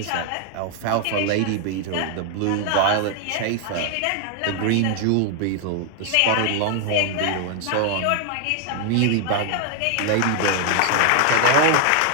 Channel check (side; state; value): both; different; correlation 0.00